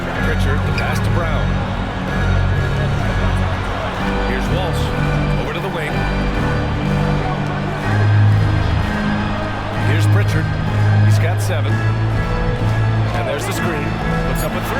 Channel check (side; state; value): both; identical; correlation 1.00